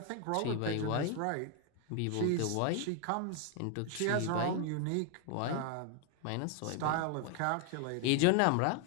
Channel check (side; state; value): both; different; correlation 0.01